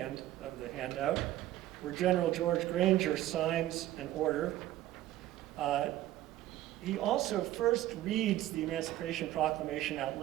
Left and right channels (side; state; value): left; quieter; 14.4 dB